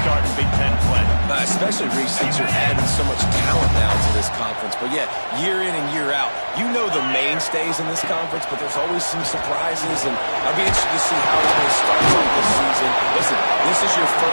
start in Big Ten play. Especially, Reese, since you're adding so much talent now to this conference. But, yeah, year in and year out, you know the mainstays in this conference, but there's always some surprises, and I'll be interested to see how it's going to start this season. Listen, this is your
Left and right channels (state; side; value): inverted; both; correlation -1.00